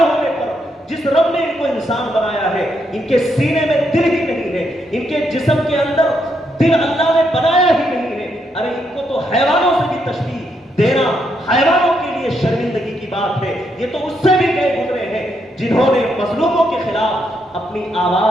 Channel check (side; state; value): both; normal; correlation 0.78